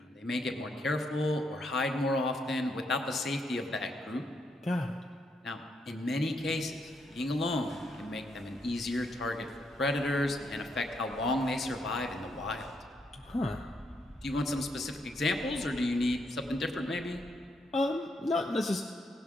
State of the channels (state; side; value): normal; both; correlation 0.77